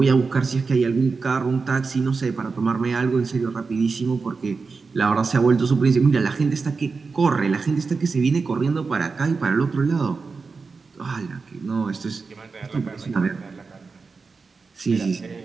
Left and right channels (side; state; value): left; quieter; 4.6 dB